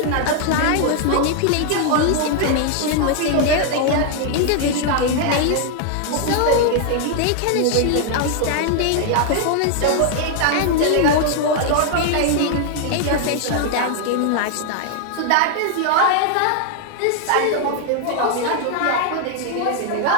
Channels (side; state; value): both; different; correlation 0.00